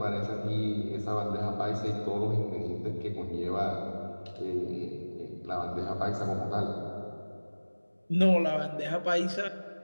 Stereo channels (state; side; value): inverted; both; correlation -1.00